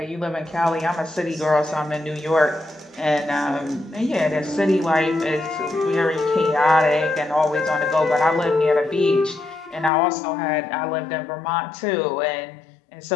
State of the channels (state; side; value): drops out; right; at 9.9 s